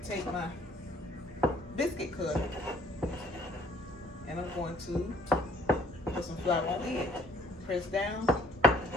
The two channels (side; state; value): both; normal; correlation 0.60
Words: take my biscuit cutter and I'm going to put some flour on it. Press down.